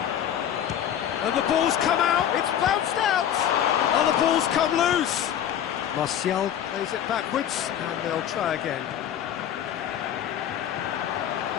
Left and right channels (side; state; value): right; quieter; 10.1 dB